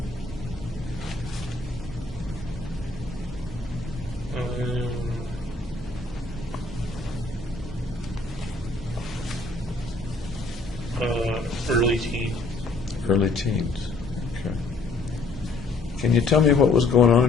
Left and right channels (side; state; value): right; quieter; 3.3 dB